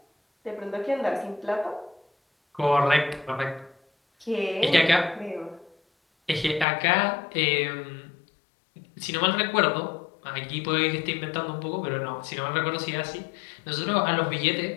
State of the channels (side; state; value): right; drops out; at 6.7 s